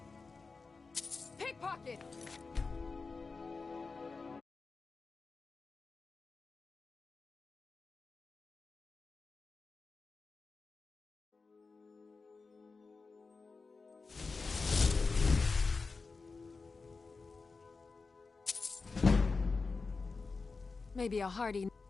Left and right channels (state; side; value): quieter; right; 4.2 dB